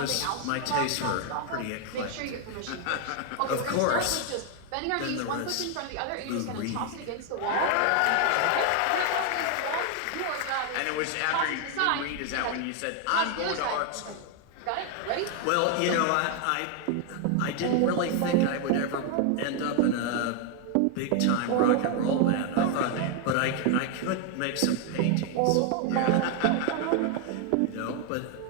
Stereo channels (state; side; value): different; both; correlation 0.01